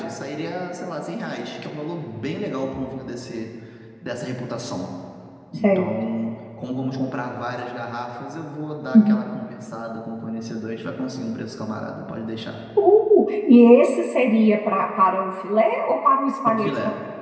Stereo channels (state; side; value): identical; both; correlation 1.00